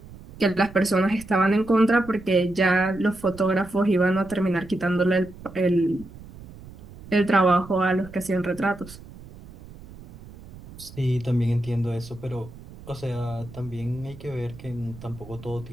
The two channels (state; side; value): noise; right; rumble, 18 dB below the sound